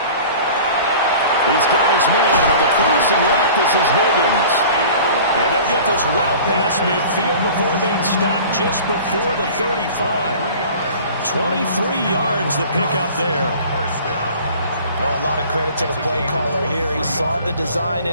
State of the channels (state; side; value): inverted; both; correlation -0.43